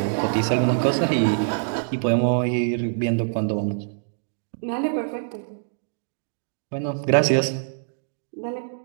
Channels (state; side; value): silent; left; digital silence